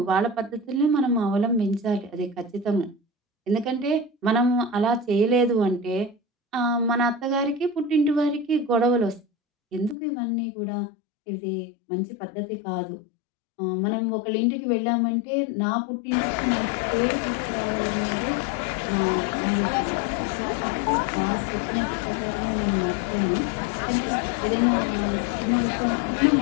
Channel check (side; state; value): right; drops out; at 10.0 s